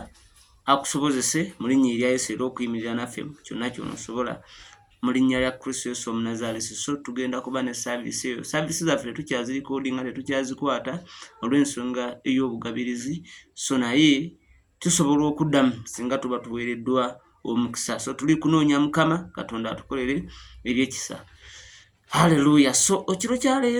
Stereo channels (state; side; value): identical; both; correlation 1.00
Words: akusobozese mu linnya erya Yesu era okuyimirira naffe kyonna ky'onosobola mu linnya lya Kristo Yesu Omunnazaaleesi. So tugenda kuba ne saavisi eyo. Saavisi zaffe tukyazirikodinga, tetukyazikwata olw'ensonga ey'obugabirizi. So naye tusobola okuddamu singa tuba tuweereddwa omukisa. So tuli kunoonya Mukama Katonda atukolere ebyekisa. Haleluya. So ekiro kya